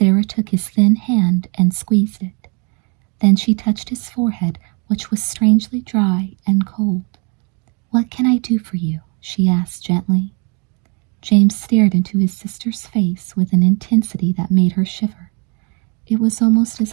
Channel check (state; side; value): quieter; left; 33.4 dB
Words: took his thin hand and squeezed it. Then she touched his forehead, which was strangely dry and cold. "What can I do for you?" she asked gently. James stared into his sister's face with an intensity that made her shiver. It was almost